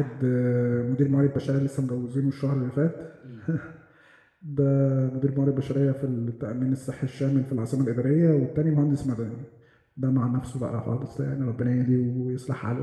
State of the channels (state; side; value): identical; both; correlation 1.00